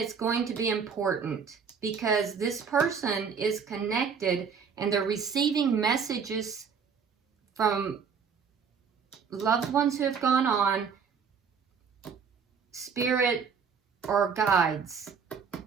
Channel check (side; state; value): left; quieter; 6.3 dB